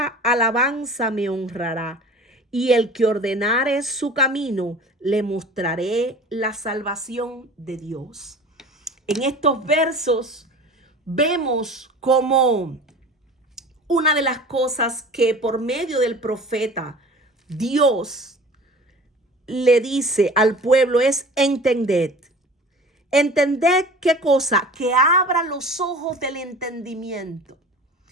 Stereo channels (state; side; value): normal; both; correlation 0.40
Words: alabanza me honrará, y el que ordenare su camino, le mostraré la salvación de Dios. En estos versos vemos como una de las cosas que por medio del profeta Dios le dice al pueblo es entended. Entended qué cosa, que abra los ojos del entendimiento.